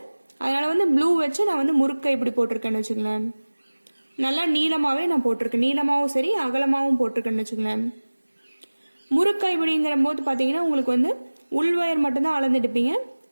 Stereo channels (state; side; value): inverted; both; correlation -1.00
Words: அதனால வந்து ப்ளூ வச்சு நான் வந்து முறுக்கை இப்படி போட்டிருக்கேன்னு வச்சுக்கலேன். நல்லா நீளமாகவே நான் போட்டிருக்கேன், நீளமாகவும் சரி அகலமாகவும் போட்டிருக்கேன்னு வச்சுக்கலேன். முறுக்கை இப்படிங்கிற போது பார்த்தீங்கன்னா உங்களுக்கு வந்து உள் ஒயர் மட்டும்தான் அளந்துட்டுப்பீங்க.